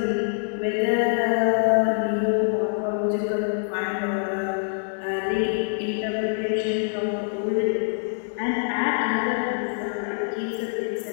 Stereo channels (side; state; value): right; silent; digital silence